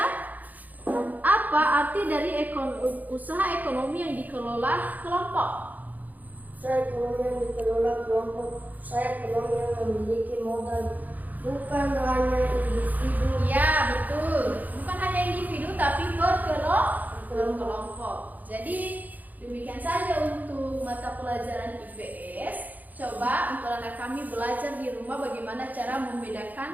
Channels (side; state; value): left; late; 0.081 ms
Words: arti dari usaha ekonomi yang dikelola kelompok? Usaha ekonomi yang dikelola kelompok, usaha ekonomi yang memiliki modal bukan hanya individu. Ya, betul. Bukan hanya individu tapi berkelompok. Jadi demikian saja untuk mata pelajaran IPS. Coba untuk anak kami belajar di rumah bagaimana cara